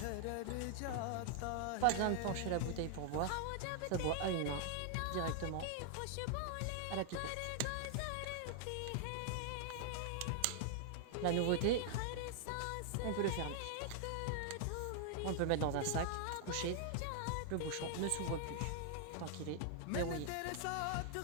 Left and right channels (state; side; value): different; both; correlation 0.00